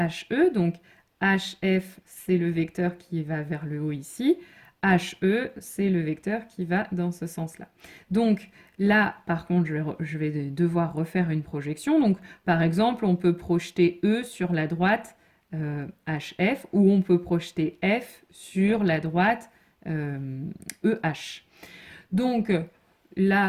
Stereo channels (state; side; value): identical; both; correlation 1.00